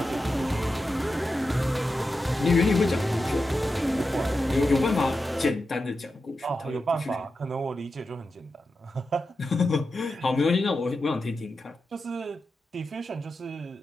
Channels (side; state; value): both; normal; correlation 0.90